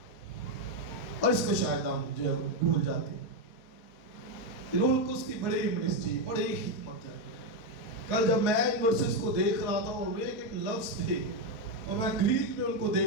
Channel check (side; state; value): right; late; 4.3 ms